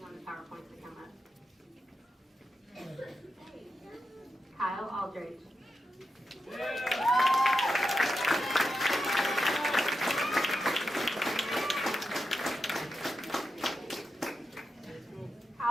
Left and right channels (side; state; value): both; normal; correlation 0.88